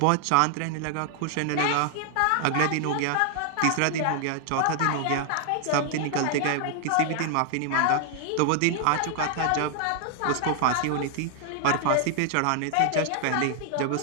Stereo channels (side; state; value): both; different; correlation 0.00